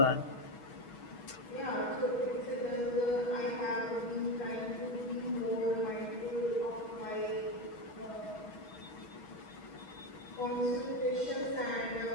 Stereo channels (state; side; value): late; right; 6.3 ms